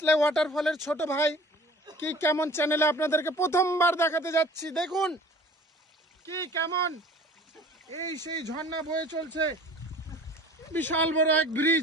ওয়াটারফলের ছোট ভাই কি কেমন চ্যানেলে আপনাদেরকে প্রথমবার দেখাতে যাচ্ছি। দেখুন কি কেমন এই সেই ঝর্ণা বয়ে চলছে। বিশাল বড় এক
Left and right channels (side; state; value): both; normal; correlation 0.47